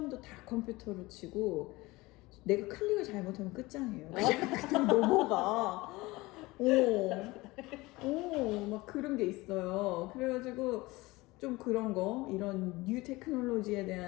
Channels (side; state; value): right; quieter; 21.3 dB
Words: 다 컴퓨터로 치고 내가 클릭을 잘못하면 끝장이에요. 그냥 넘어가. 막 그런 게 있어요. 그래가지고 좀 그런 거, 이런 뉴 테크놀로지에